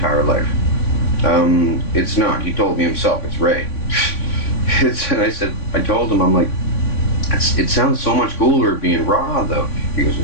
life. It's not. He told me himself, it's Ray. And I told him, I'm like, it sounds so much cooler being Ra, though. He goes,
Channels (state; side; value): late; right; 3.5 ms